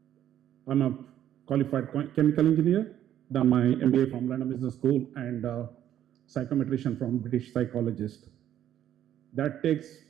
I'm a qualified chemical engineer, done my MBA from London Business School, and psychometrician from British psychologist. That takes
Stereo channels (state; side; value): quieter; left; 11.2 dB